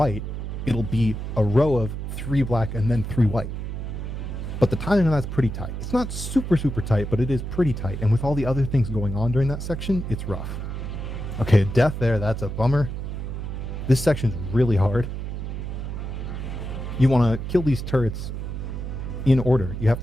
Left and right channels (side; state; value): right; noise; hum, 5 dB below the sound